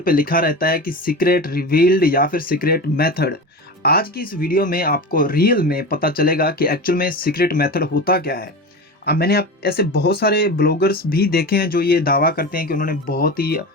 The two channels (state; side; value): normal; both; correlation 0.27